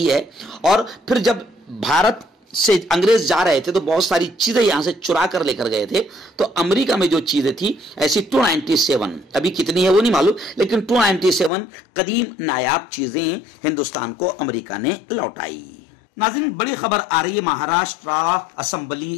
है। और फिर जब भारत से अंग्रेज जा रहे थे तो बहुत सारी चीजें यहां से चुरा कर लेकर गए थे। तो अमेरिका में जो चीजें थी ऐसी 297, अभी कितनी है वो नहीं मालूम, लेकिन 297 कदीम नायाब चीजें हिंदुस्तान को अमेरिका ने लौटाई। नाज़रीन, बड़ी खबर आ रही है महाराष्ट्र असेंबली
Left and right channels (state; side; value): drops out; right; at 11.5 s